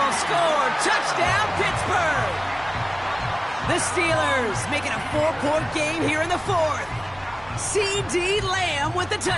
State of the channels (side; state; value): right; noise; hum, 23 dB below the sound